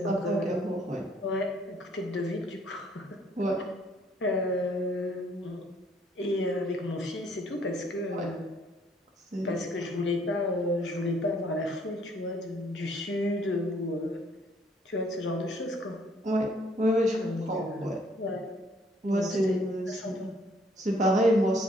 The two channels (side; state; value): both; normal; correlation 0.64